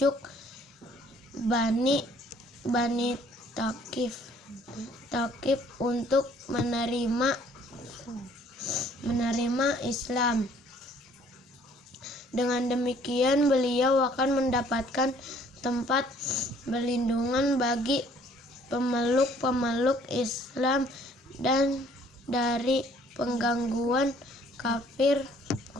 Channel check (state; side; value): normal; both; correlation 0.59